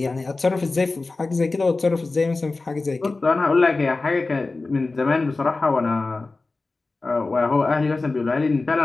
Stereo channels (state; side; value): quieter; right; 3.5 dB